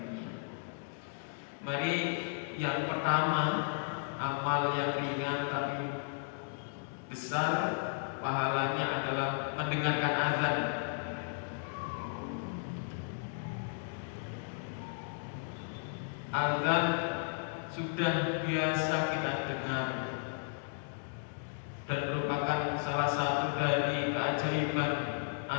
Mari yang pertama, amal yang ringan tapi besar pahalanya adalah mendengarkan azan. Azan sudah biasa kita dengar dan merupakan salah satu dari keajaiban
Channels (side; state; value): right; silent; digital silence